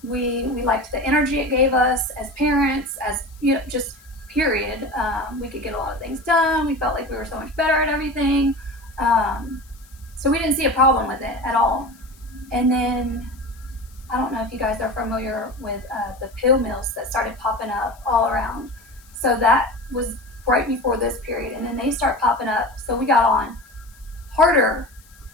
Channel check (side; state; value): left; noise; hiss, 27 dB below the sound